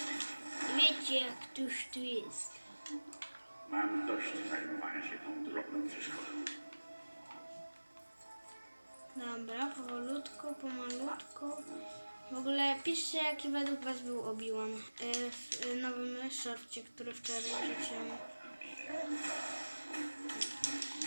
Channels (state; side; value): inverted; both; correlation -1.00